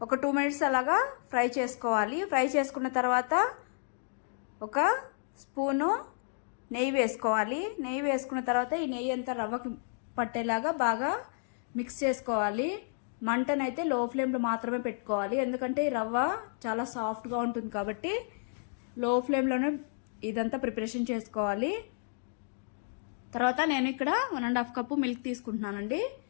ఒక 2 మినిట్స్ అలాగా ఫ్రై చేసుకోవాలి. ఫ్రై చేసుకున్న తర్వాత 1 స్పూను నెయ్యి వేసుకోవాలి. నెయ్యి వేసుకున్న తర్వాత ఈ నెయ్యి అంతా రవ్వకి పట్టేలాగా బాగా మిక్స్ చేసుకోవాలి. మంటనైతే లో ఫ్లేమ్లో మాత్రమే పెట్టుకోవాలి, ఎందుకంటే ఈ రవ్వ చాలా సాఫ్ట్గా ఉంటుంది కాబట్టి లో ఫ్లేమ్లోనే ఇదంతా ప్రిపరేషన్ చేసుకోవాలి. తర్వాత నేను ఇక్కడ 1.5 కప్పు మిల్క్ తీసుకుంటున్నానండి.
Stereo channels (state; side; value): silent; right; digital silence